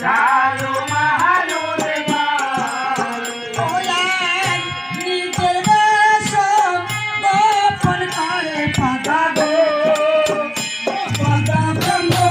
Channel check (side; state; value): both; identical; correlation 1.00